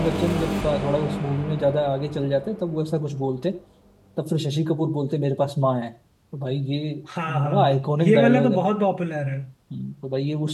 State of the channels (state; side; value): identical; both; correlation 1.00